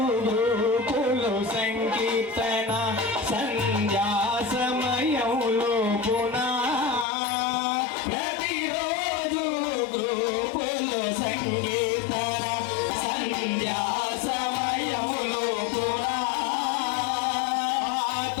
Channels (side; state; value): right; drops out; at 7.1 s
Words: గ్రూపులో సంకీర్తన సంధ్యా సమయంలో పునా ప్రతిరోజు గ్రూపులో సంకీర్తన సంధ్యా సమయములో పునా